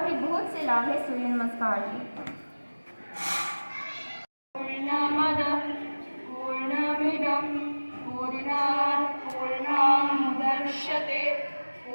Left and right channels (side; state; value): both; inverted; correlation -1.00